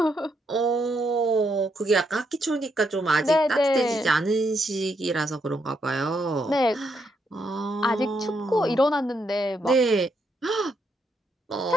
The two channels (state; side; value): normal; both; correlation 0.78